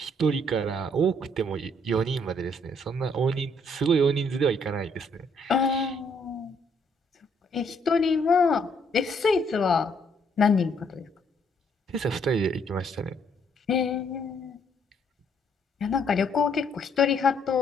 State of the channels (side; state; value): both; normal; correlation 0.69